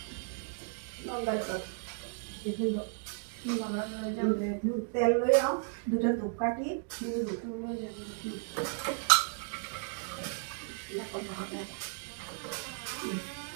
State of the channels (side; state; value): left; silent; 55 dB below the other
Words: তেল লৈ আও দুটা ধূপকাঠি